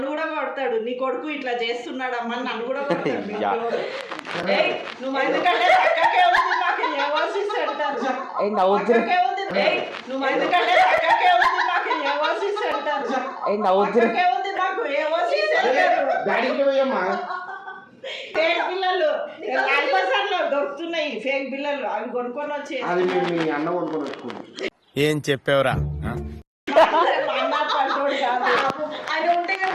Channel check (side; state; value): both; identical; correlation 1.00